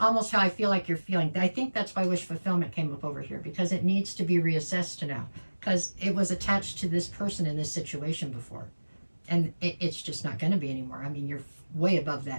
how I feel like you're feeling. I think that's why wish fulfillment came up over here, because it needs to be reassessed now, because it was attached to this person in this situation before. And it's just not going to be anymore. I mean, you're way above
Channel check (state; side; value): inverted; both; correlation -1.00